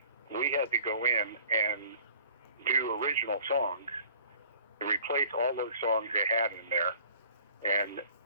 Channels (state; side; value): inverted; both; correlation -0.51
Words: we had to go in and do original songs, to replace all those songs they had in there, and